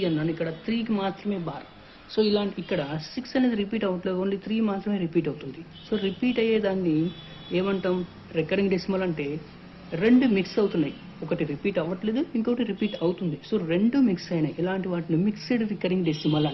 అన్నాను. ఇక్కడ 3కి మాత్రమే బార్. సో ఇలాంటి ఇక్కడ 6 అనేది రిపీట్ అవ్వట్లేదు, ఓన్లీ 3 మాత్రమే రిపీట్ అవుతుంది. సో రిపీట్ అయ్యేదాన్ని ఏమంటాం? Recurring decimal. అంటే రెండు మిక్స్ అవుతున్నాయి, ఒకటి రిపీట్ అవ్వట్లేదు, ఇంకొకటి రిపీట్ అవుతుంది. సో రెండు మిక్స్ అయినాయి, ఇలాంటి వాటిని మిక్స్డ్ రికరింగ్ డెసిమల్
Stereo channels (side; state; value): both; identical; correlation 1.00